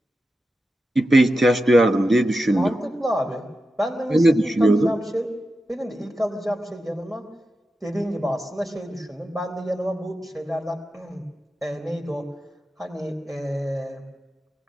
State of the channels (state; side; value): normal; both; correlation 0.90